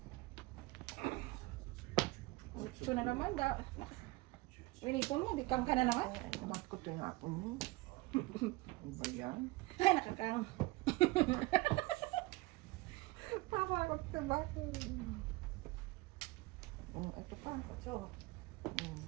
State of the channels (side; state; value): left; quieter; 21.1 dB